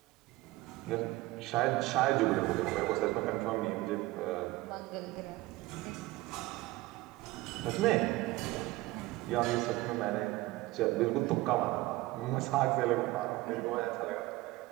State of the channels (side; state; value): left; quieter; 19.1 dB